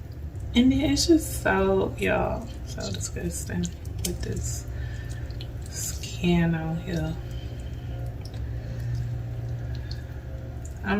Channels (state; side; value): identical; both; correlation 1.00